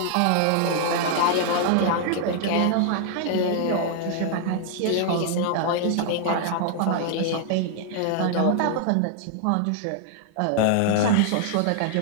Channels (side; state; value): both; different; correlation 0.00